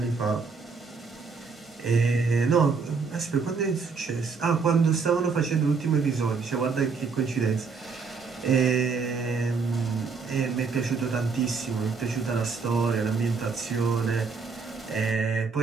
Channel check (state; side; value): quieter; left; 5.0 dB